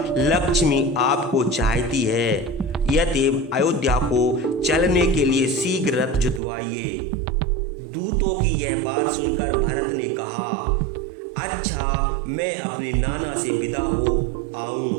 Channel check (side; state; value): left; drops out; at 6.4 s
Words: लक्ष्मी आपको चाहती है, यतएव अयोध्या को चलने के लिए शीघ्र रथ जुतवाइए। दूतों की यह बात सुनकर भरत ने कहा, अच्छा, मैं अपने नाना से विदा हो आऊं,